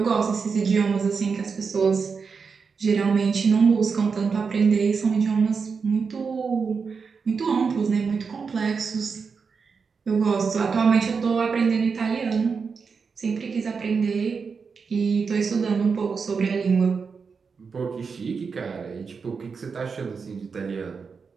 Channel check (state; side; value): quieter; left; 5.4 dB